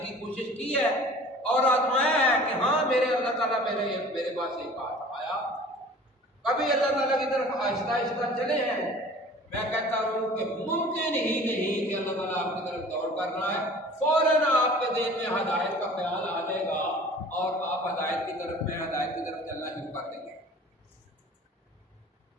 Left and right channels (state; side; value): normal; both; correlation 0.45